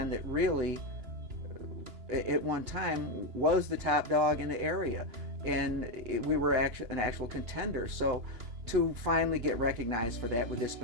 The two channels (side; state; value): left; late; 2.9 ms